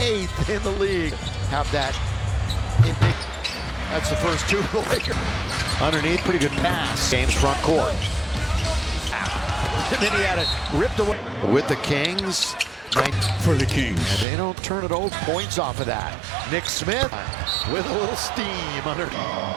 in the league. Have that. That's the first 2 of the Lakers. Underneath, pretty good pass. James front court. And then he had it ripped away with the Kings. For the Kings. And they don't turn it over. Points off of that. Nick Smith with a little steam under.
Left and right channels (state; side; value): drops out; left; at 14.2 s